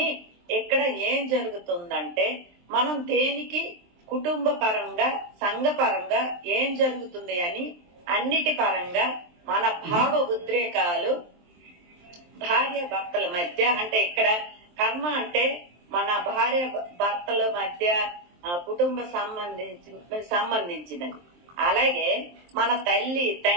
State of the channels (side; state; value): left; late; 23 ms